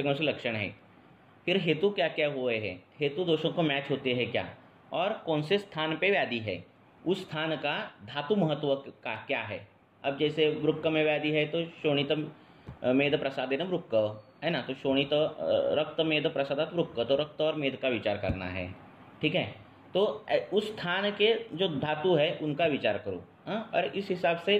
लक्षण हैं, फिर हेतु क्या क्या हुए हैं, हेतु दोषों को मैच होते हैं क्या, और कौन से स्थान पे व्याधि है, उस स्थान का धातु महत्व का क्या है. अब जैसे वृक्क में व्याधि है तो शोणित मेद प्रसादेन वृक्क है ना, तो शोणित रक्त मेद प्रसादात वृक्क, तो रक्त और मेद का विचार करना है. ठीक है. तो उस स्थान के जो धातु है उनका विचार करो. और इस हिसाब से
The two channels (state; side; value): identical; both; correlation 1.00